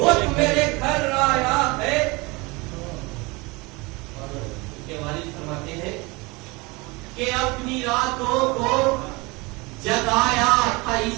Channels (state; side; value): quieter; left; 25.2 dB